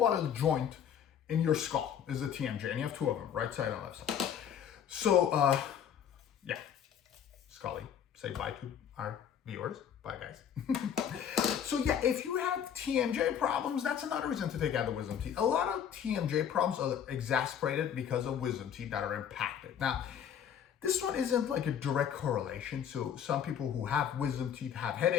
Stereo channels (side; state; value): right; quieter; 8.7 dB